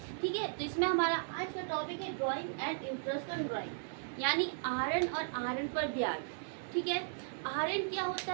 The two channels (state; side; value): silent; left; digital silence